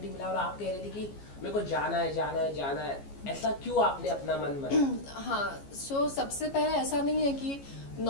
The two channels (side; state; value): right; late; 14 ms